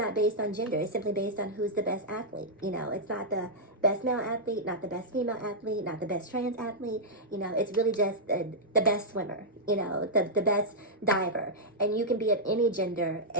based on gender. It's simply based on who's the best athlete. It's not the best male athlete, not the best female athlete, not the best trans athlete. It's really just the best swimmer, the best diver. And you can be of any gender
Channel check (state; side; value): normal; both; correlation -0.08